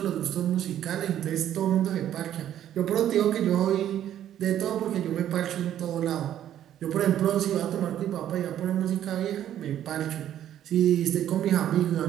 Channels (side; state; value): left; quieter; 11.1 dB